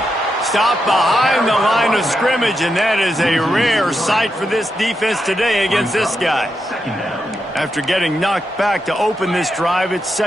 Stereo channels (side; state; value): both; normal; correlation 0.85